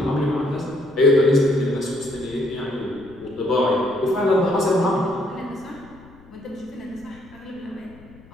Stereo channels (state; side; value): noise; left; rumble, 24 dB below the sound